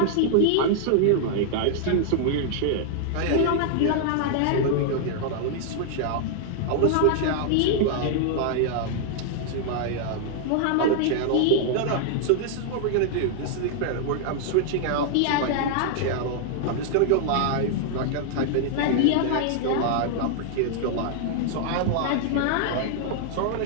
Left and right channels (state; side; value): different; both; correlation -0.01